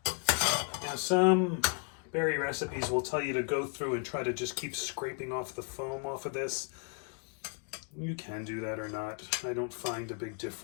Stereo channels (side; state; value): right; quieter; 38.6 dB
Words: Now some berry recipes will tell you to go through and try to just keep scraping off the foam off of this. You can do that or not. I don't find a big